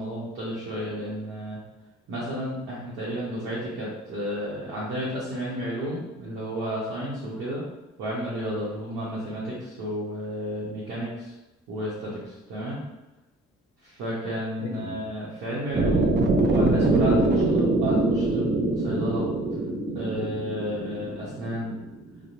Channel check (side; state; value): both; normal; correlation 0.49